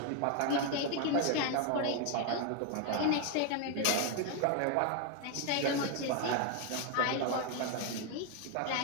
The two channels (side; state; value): both; different; correlation 0.01